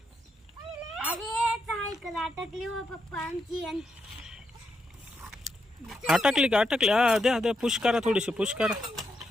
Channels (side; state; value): both; normal; correlation 0.81